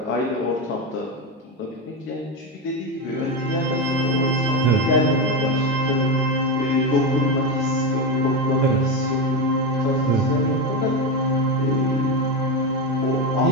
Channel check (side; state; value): both; normal; correlation 0.14